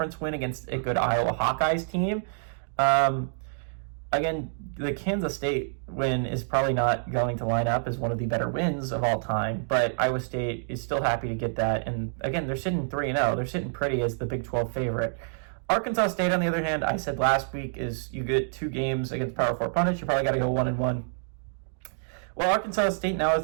win against a good Iowa Hawkeyes team. Again, the Kansas State win is probably not going to line up as one of the better wins of all time. But Iowa State is still happy to get that. And again, they're sitting 3-0. They're sitting pretty as the Big 12 favorite. Arkansas State, on the other hand, I said last week, is you get 2 games against Power 4 opponents. You probably got to go 1-1. Well, Arkansas State now,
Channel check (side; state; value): left; silent; digital silence